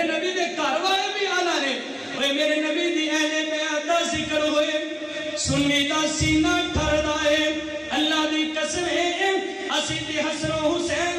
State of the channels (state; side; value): identical; both; correlation 1.00